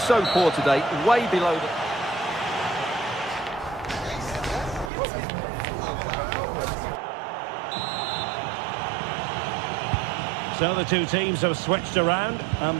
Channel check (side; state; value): left; drops out; at 4.9 s